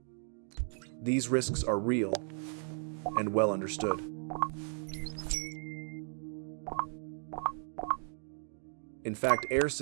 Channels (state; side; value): silent; left; 54 dB below the other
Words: These risks are real and well understood. In fact, air